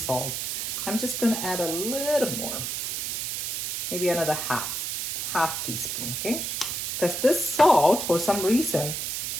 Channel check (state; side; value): noise; right; hiss, 2 dB below the sound